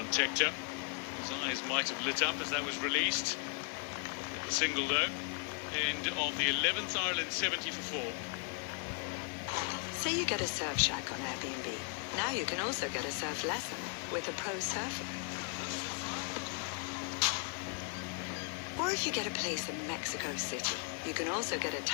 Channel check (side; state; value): right; quieter; 36.2 dB